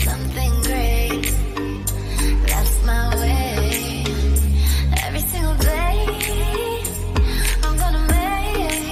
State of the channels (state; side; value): identical; both; correlation 1.00